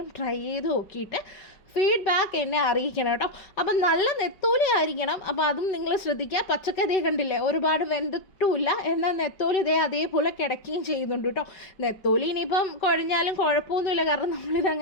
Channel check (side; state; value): right; late; 5.2 ms